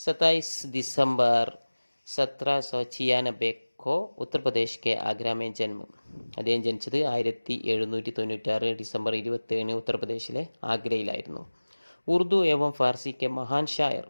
दिसंबर 1796 को उत्तर प्रदेश के आगरा में जन्म. അദ്ദേഹം ജനിച്ചത് 1796 ഡിസംബർ 27 ഉത്തർപ്രദേശിലെ ആഗ്രയിലായിരുന്നു. ഉറുദു ഏവം ഫാർസി കെ മഹാൻ ഷായർ.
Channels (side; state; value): both; inverted; correlation -1.00